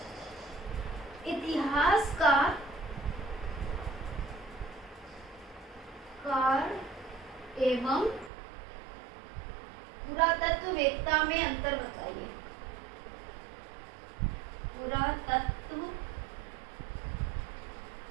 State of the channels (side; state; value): left; drops out; at 8.3 s